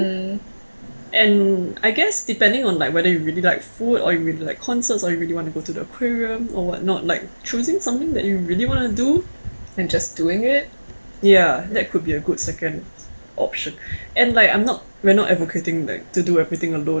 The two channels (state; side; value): inverted; both; correlation -1.00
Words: And I guess depending on like whether you really like food or you really like concerts or you really want to go to the aquarium or whatnot, like choosing something that you really want to do and just doing it. Yeah, that could be a good second option. And like we're not advocating like to do everything